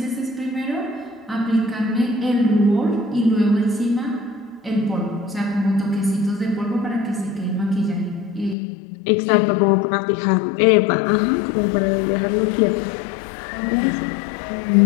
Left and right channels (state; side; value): drops out; right; at 8.6 s